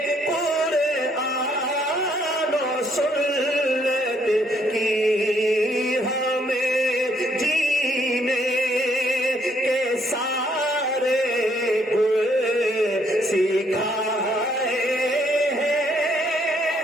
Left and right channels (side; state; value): both; normal; correlation 0.70